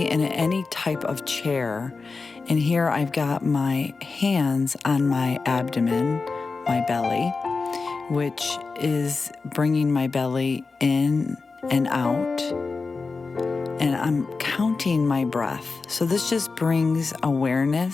in any type of chair. And here I've got my hands on my abdomen, my belly, which is bringing my belly in and out. And I'm counting my breath. So this just brings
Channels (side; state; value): right; quieter; 4.2 dB